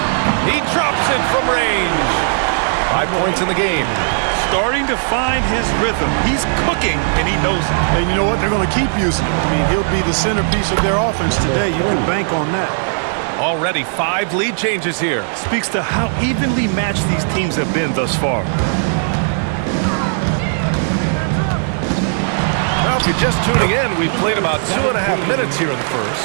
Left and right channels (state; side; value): silent; left; digital silence